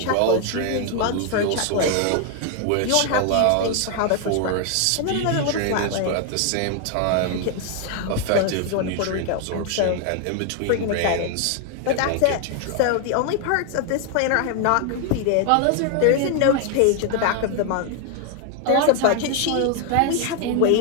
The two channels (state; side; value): different; both; correlation 0.00